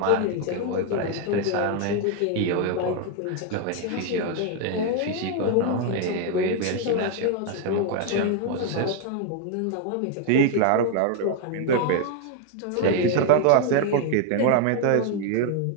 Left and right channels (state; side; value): different; both; correlation 0.01